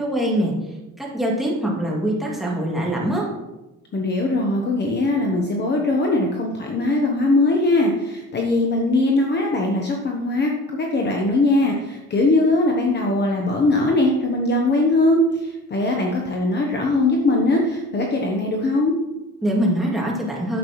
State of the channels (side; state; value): both; normal; correlation 0.44